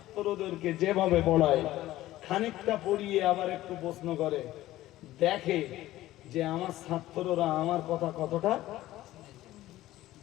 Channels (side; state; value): right; quieter; 15.5 dB